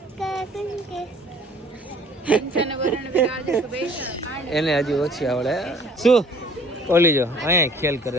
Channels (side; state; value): both; normal; correlation 0.54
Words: એને હજી ઓછી આવડે. શું ઓલી જો અહીંયા ખેલ કરે